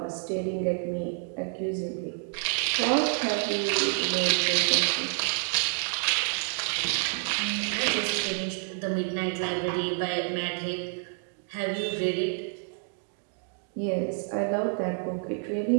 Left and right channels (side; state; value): left; silent; 55 dB below the other